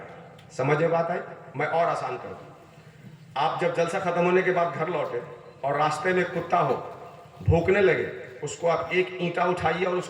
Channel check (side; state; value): both; identical; correlation 1.00